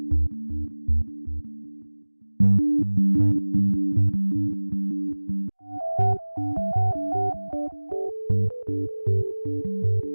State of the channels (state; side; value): inverted; both; correlation -1.00